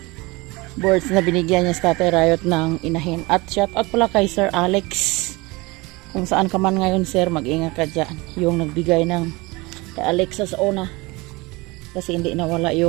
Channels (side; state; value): left; quieter; 23.8 dB